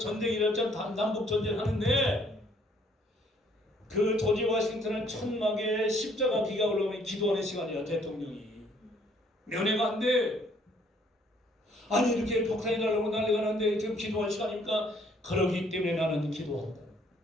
일어났잖아. 남북 전쟁 하는데 그 조지 워싱턴은 천막에 십자가 비가 올라오면 기도하는 시간이야. 대통령이 면회가 안 돼. 아니 이렇게 폭탄이 날라오고 난리가 나는데 지금 기도할 시간입니까? 그러기 때문에 나는 기도한다.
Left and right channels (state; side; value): normal; both; correlation 0.63